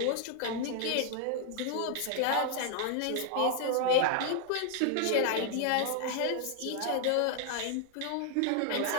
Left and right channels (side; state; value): both; different; correlation 0.00